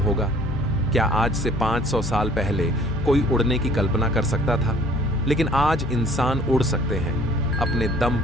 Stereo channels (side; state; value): both; normal; correlation 0.54